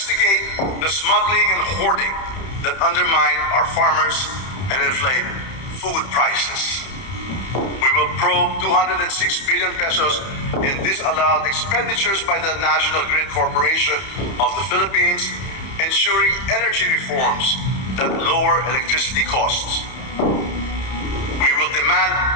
the smuggling and hoarding that undermine our farmers and inflate food prices. We will probe 206 billion pesos in disallowed expenditures by the National Grid Corporation of the Philippines, ensuring energy reforms that lower electricity costs. We will demand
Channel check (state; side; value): late; right; 31 ms